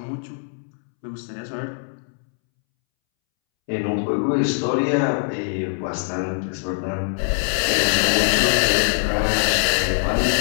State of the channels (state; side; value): silent; right; 64 dB below the other